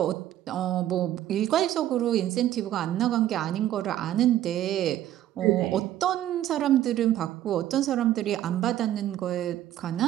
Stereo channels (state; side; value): quieter; left; 12.6 dB